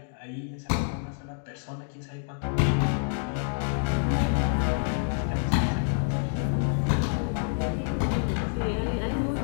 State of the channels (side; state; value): right; silent; 60 dB below the other